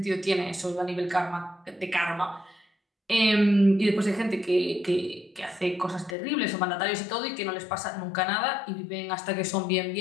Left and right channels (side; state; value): right; drops out; at 6.2 s